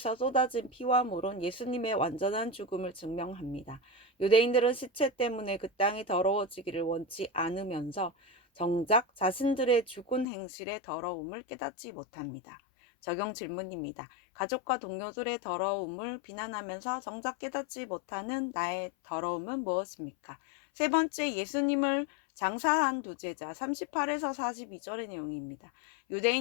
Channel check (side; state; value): right; drops out; at 10.2 s